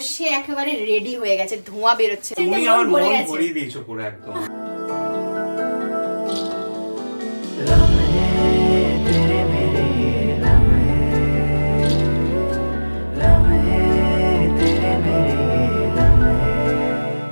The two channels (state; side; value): inverted; both; correlation -1.00